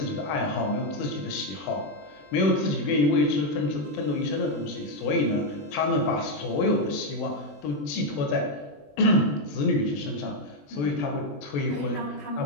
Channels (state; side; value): late; right; 20 ms